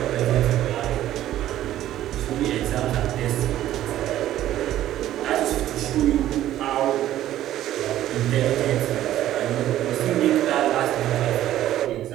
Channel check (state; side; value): quieter; left; 13.0 dB